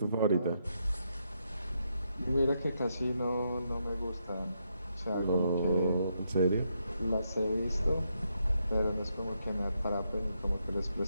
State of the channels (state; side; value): inverted; both; correlation -0.79